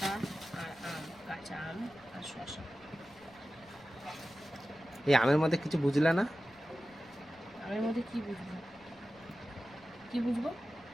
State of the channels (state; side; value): noise; left; rumble, 27 dB below the sound